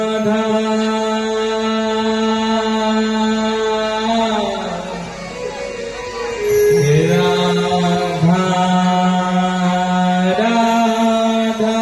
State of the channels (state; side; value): identical; both; correlation 1.00